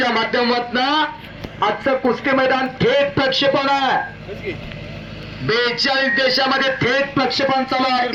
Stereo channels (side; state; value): both; identical; correlation 1.00